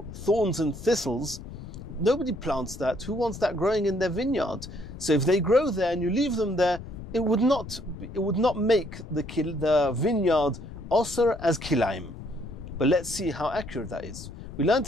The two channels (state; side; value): noise; left; rumble, 12 dB below the sound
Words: thorns and thistles. Nobody plants that. Who wants that growing in their vineyard? So if they grow there and you leave them there, it would not make the vineyard osir as kilaim. But let's see how accurate that is. We learnt